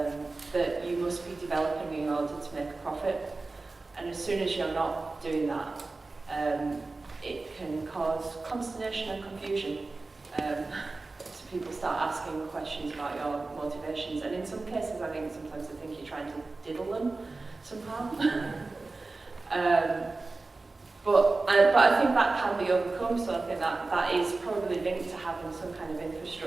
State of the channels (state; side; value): quieter; left; 3.5 dB